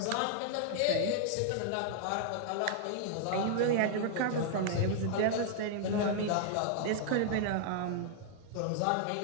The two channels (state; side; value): different; both; correlation -0.01